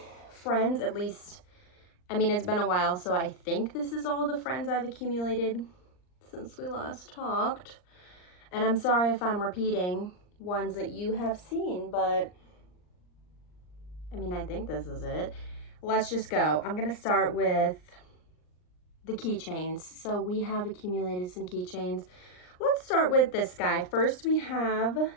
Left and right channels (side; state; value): right; late; 39 ms